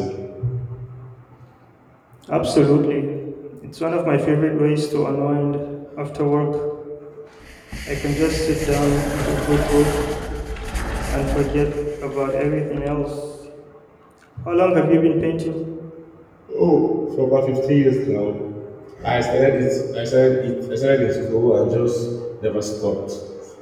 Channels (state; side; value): identical; both; correlation 1.00